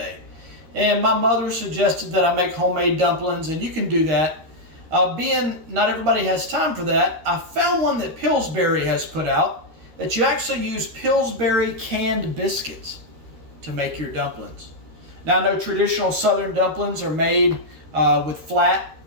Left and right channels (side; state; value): left; late; 13 ms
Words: And my mother suggested that I make homemade dumplings, and you can do that. Being not everybody has time for that, I found one that Pillsbury has put out that you actually use Pillsbury canned biscuits to make your dumplings. Now I know traditional southern dumplings are made with flat